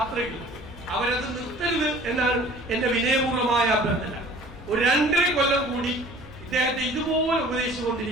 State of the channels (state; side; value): normal; both; correlation 0.48